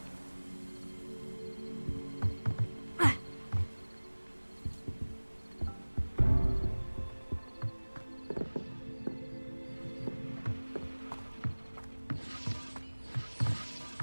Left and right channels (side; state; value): both; inverted; correlation -1.00